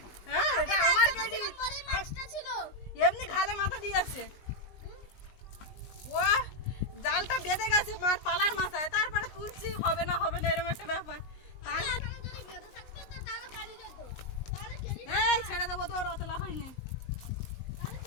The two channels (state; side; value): late; right; 19 ms